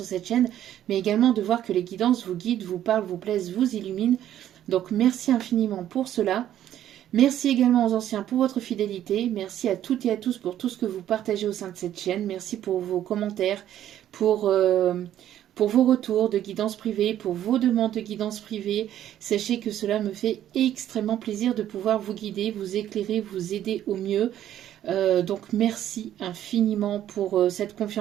cette chaîne, mais également de voir que les guidances vous guident, vous parlent, vous plaisent, vous illuminent. Donc merci infiniment pour cela. Merci également aux anciens pour votre fidélité. Merci à toutes et à tous pour tout ce que vous partagez au sein de cette chaîne. Merci pour vos commentaires, pour vos retours de guidance privée, pour vos demandes de guidance privée. Sachez que cela me fait extrêmement plaisir de pouvoir vous guider, vous éclairer, vous aider au mieux. Donc merci infiniment pour cette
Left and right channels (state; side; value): quieter; left; 11.5 dB